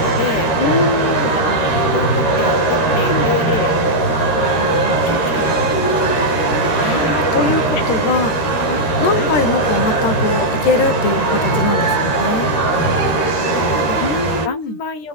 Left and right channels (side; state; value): right; late; 13 ms